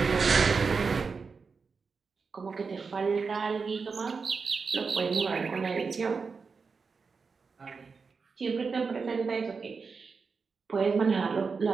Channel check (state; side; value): quieter; left; 5.0 dB